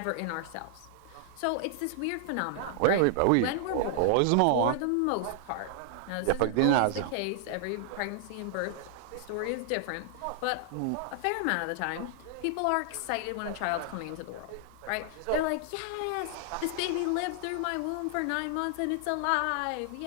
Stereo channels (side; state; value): both; different; correlation -0.01